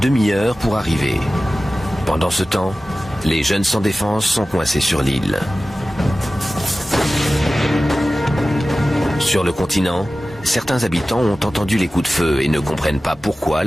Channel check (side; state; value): both; normal; correlation 0.95